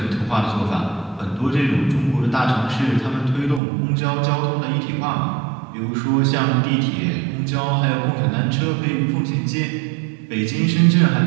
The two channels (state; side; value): drops out; left; at 3.6 s